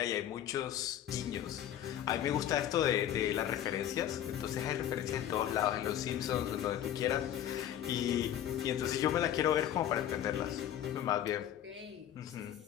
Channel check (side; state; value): right; quieter; 11.0 dB